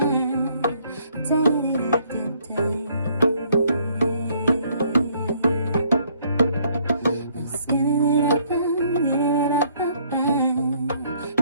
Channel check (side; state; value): both; inverted; correlation -0.65